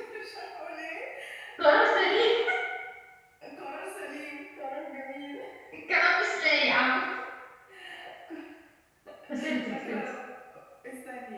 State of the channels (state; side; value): identical; both; correlation 1.00